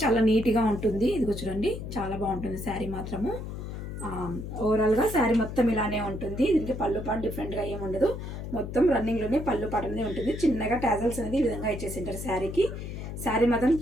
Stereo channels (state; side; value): noise; left; hum, 7 dB below the sound